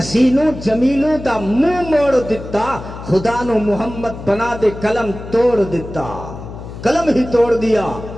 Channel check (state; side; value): noise; left; hum, 12 dB below the sound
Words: جمیلوں دا منہ موڑ دیتا، خدا نو محمد بنا دے قلم توڑ دیتا، قلم ہی توڑ دیا۔